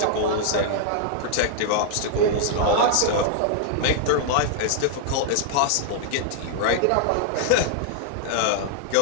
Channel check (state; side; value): different; both; correlation -0.01